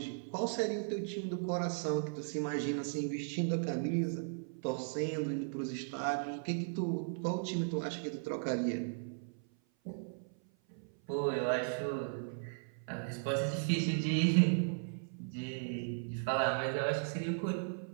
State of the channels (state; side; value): silent; left; 53 dB below the other